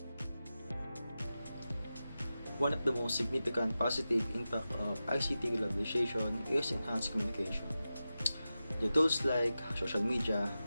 One of the most significant positive impact of ICT globalization is enhanced communication. The tools like social media,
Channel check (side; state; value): both; inverted; correlation -0.93